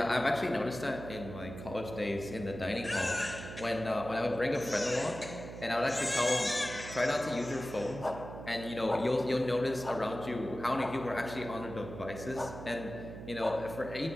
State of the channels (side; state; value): right; noise; hum, 10 dB below the sound